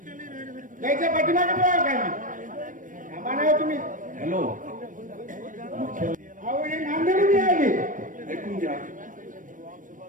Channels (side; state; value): left; late; 0.38 ms